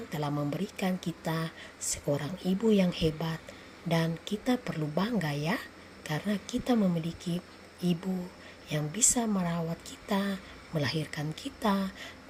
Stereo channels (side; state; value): both; identical; correlation 1.00